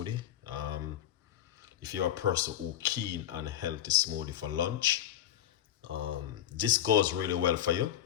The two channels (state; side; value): quieter; right; 11.5 dB